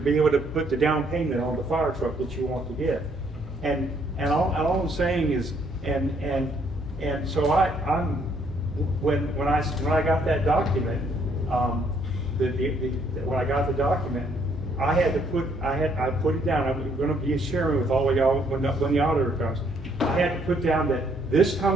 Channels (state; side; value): normal; both; correlation 0.68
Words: able to put the down payment on the fire truck that you want to get. And all I'm saying is, and so when I got that document, when I got the document, I put it down. I'm going to be sharing with all of y'all when the auditor comes. I had to put down that this